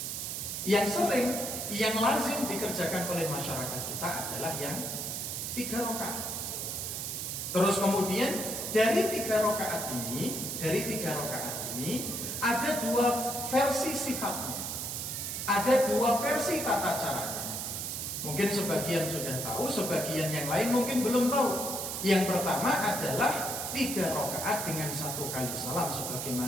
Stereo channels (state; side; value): noise; right; hiss, 4 dB below the sound